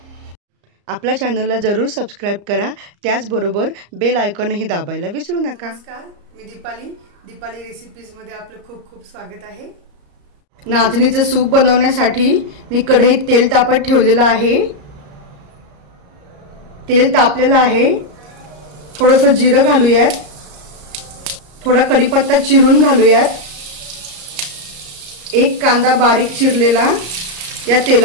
आपल्या चॅनलला जरूर सबस्क्राइब करा, त्याचबरोबर बेल आयकॉनही दाबायला विसरू नका। नमस्कार, मी दीपाली रेसिपीज मध्ये आपलं खूप खूप स्वागत आहे। नाचणीचे सूप बनवण्यासाठी मी कढईत तेल तापत ठेवलेलं आहे। तेल तापलेलं आहे। थोडंसं जिरं घालूयात, थोडा कढीपत्ता चिरून घालूयात। एक कांदा बारीक चिरलेला या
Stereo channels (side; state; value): left; late; 34 ms